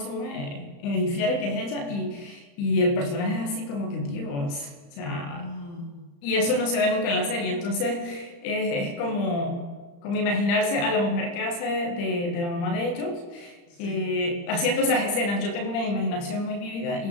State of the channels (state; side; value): late; right; 35 ms